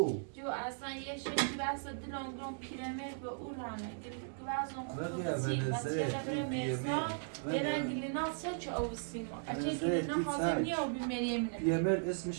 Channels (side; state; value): left; silent; digital silence